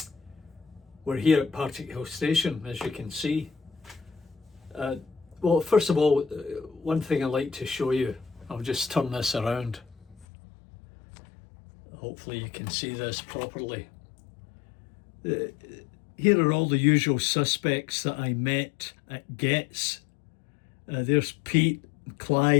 We're here at Partickhill station, as you can see. Well, first of all, one thing I'd like to show you, I'll just turn this around. Hopefully you can see this properly. Here are all the usual suspects that I met at Getz. There's Pete,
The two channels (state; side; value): drops out; right; at 10.2 s